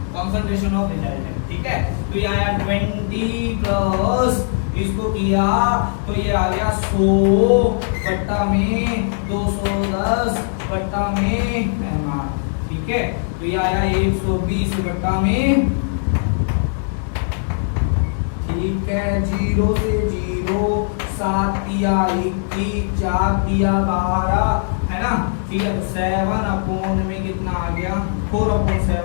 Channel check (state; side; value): silent; right; digital silence